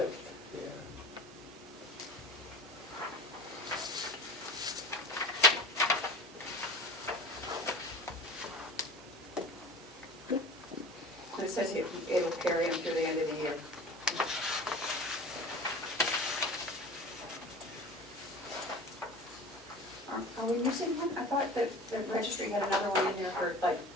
It says it'll carry them through the end of the year. Are we missing one? I thought that the registry had another one in there for like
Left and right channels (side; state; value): both; normal; correlation 0.37